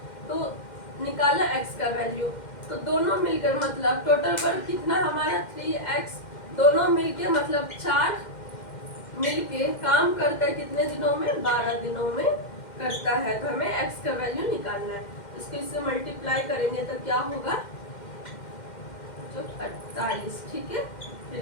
तो निकाला x का वैल्यू, तो दोनों मिलकर मतलब टोटल वर्क कितना हमारा 3x। दोनों मिलके मतलब 4 मिलके काम करता है कितने दिनों में? 12 दिनों में करता है। तो हमें x का वैल्यू निकालना है। इसको इससे मल्टीप्लाई करेंगे तो क्या होगा? 48। ठीक है, फिर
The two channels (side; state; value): right; late; 2.1 ms